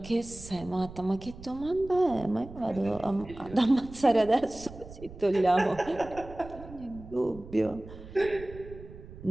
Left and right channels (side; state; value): right; noise; rumble, 16 dB below the sound